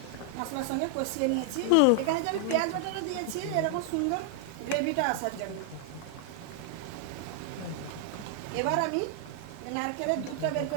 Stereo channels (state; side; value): different; both; correlation 0.00